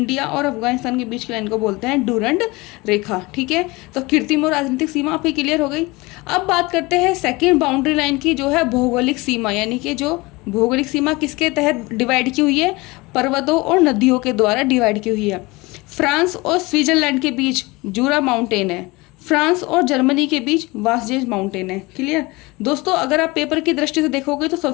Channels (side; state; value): right; quieter; 23.3 dB